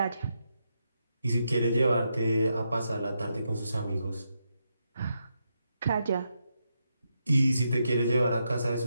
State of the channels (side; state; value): both; inverted; correlation -0.83